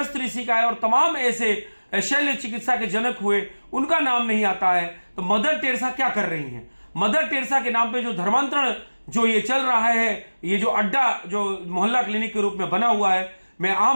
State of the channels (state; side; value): inverted; both; correlation -1.00